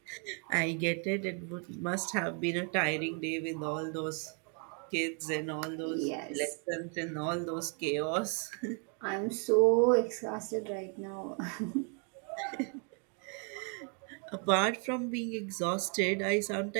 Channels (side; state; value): left; quieter; 38.9 dB